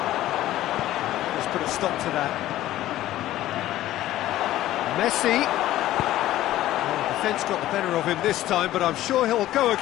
Let's put a stop to that. Messi. Defence got the better of him this time, but I'm sure he'll go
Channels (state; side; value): quieter; right; 14.4 dB